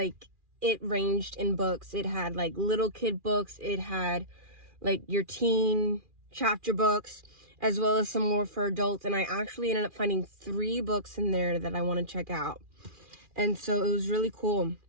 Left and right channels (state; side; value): late; left; 2.4 ms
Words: it ranged in books. It had like little kid books. It had like your teen chapter books, as well as some more for adults. And I actually ended up finding 3 books in there that I want to check out. And so it was really cool.